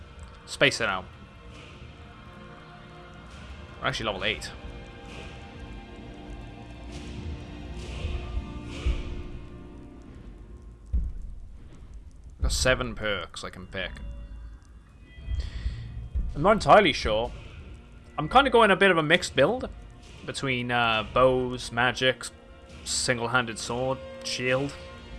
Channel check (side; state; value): both; identical; correlation 1.00